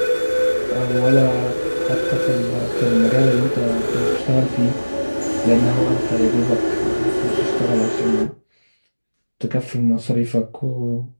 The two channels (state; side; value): inverted; both; correlation -1.00